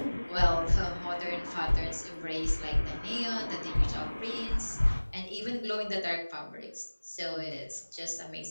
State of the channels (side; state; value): both; inverted; correlation -1.00